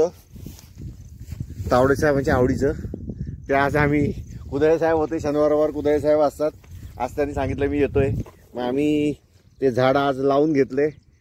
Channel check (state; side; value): identical; both; correlation 1.00